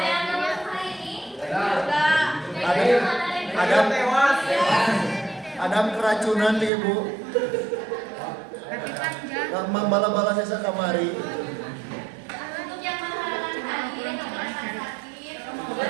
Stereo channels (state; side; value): drops out; left; at 6.7 s